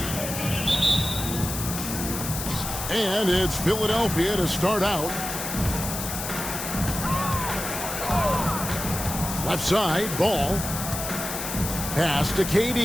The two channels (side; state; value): left; noise; hiss, 5 dB below the sound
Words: And it's Philadelphia to start out. Left side, ball. Pass to